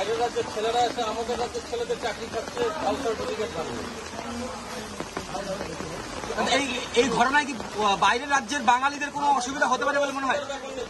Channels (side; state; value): both; identical; correlation 1.00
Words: রাজ্যের ছেলেরা এসে আমাদের রাজ্যের ছেলেদের চাকরি খাচ্ছে জাল সার্টিফিকেট বানিয়ে। এই ঘটনায় কি বাইরের রাজ্যের বাঙালিদের কোনো অসুবিধা হতে পারে বলে মনে হয়?